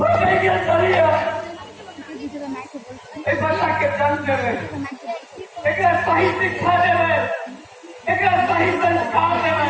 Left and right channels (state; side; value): identical; both; correlation 1.00